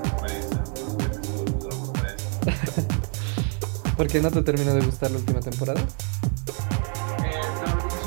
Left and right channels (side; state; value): left; quieter; 39.5 dB